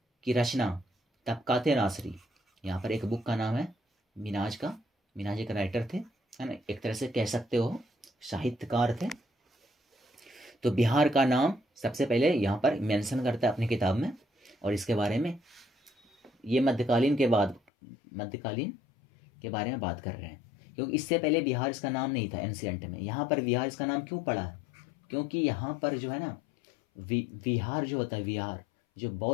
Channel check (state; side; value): drops out; right; at 17.7 s